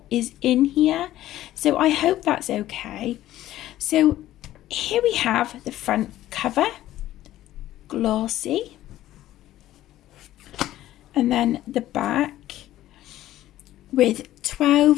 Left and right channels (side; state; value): right; quieter; 14.1 dB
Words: is in here. So I hope that's okay. So here we have the front cover, glossy, and then the back with